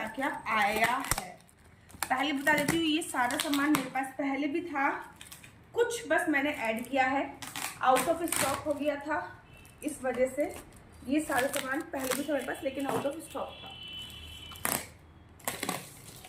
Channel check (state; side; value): identical; both; correlation 1.00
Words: क्या आया है। पहले बता देती हूँ, ये सारा सामान मेरे पास पहले भी था, कुछ बस मैंने ऐड किया है, आउट ऑफ स्टॉक हो गया था, इस वजह से ये सारा सामान पहले भी था मेरे पास, लेकिन आउट ऑफ स्टॉक था।